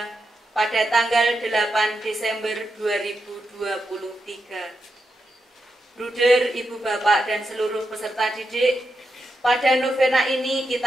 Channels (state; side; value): normal; both; correlation 0.86